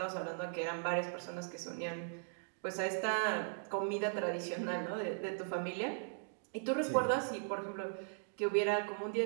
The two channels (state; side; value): silent; left; digital silence